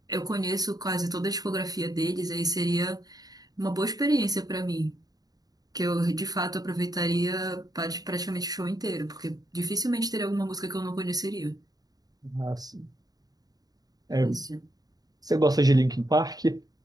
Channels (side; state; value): left; late; 0.18 ms